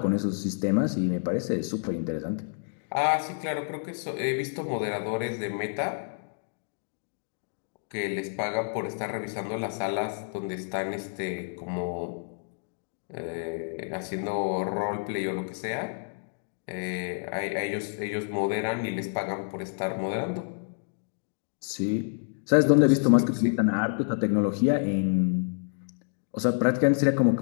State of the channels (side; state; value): right; silent; digital silence